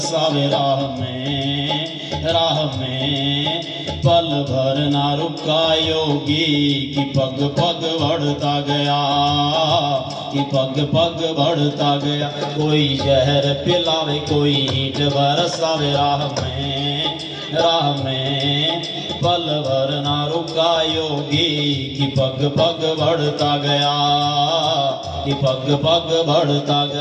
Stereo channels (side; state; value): both; identical; correlation 1.00